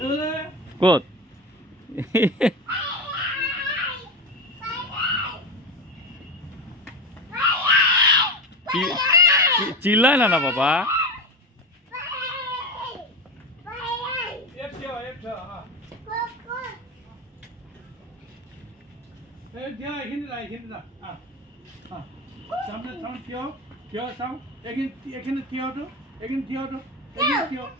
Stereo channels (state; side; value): normal; both; correlation 0.22